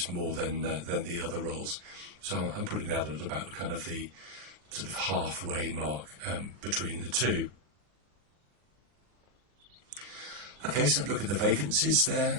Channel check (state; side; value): late; left; 40 ms